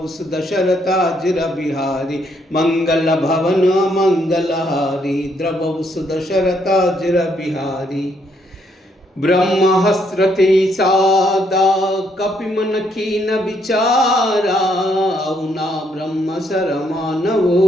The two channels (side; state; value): both; normal; correlation 0.72